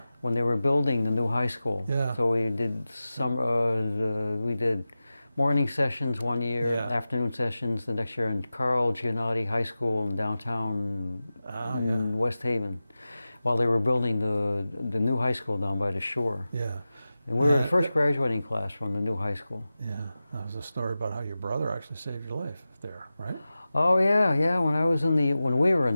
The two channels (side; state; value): both; inverted; correlation -0.95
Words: when they were building the new high school. Yeah. So we did we did morning sessions one year, Yeah. afternoon sessions the next year in Carl Giannotti High School in downtown in West Haven, while they were building the new high school down by the shore. Yeah. And we were the first graduating class from the new high school. Yeah. That was a story about how your brother actually saved your life there, right? Oh yeah. When we were in